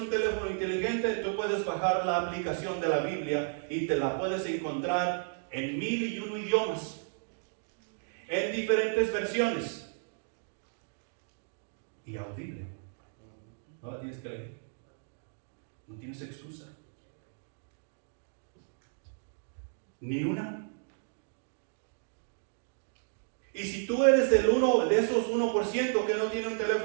teléfono inteligente, tú puedes bajar la aplicación de la Biblia y te la puedes encontrar en 1001 idiomas. En diferentes versiones y audible. No la tienes que leer, no tienes excusa ni una. Y si tú eres de esos 1% que no tiene un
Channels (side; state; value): left; silent; digital silence